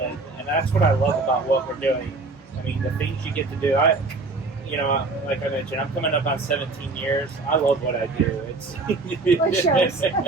that's what I love about what we're doing. I mean, the things you get to do. Like I mentioned, I'm coming up on 17 years. I love what I do. It's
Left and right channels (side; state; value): left; quieter; 3.5 dB